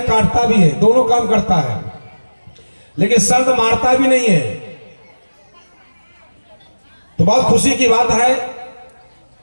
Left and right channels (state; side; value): inverted; both; correlation -1.00